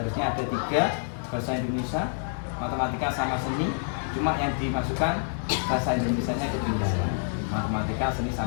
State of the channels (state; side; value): silent; right; 60 dB below the other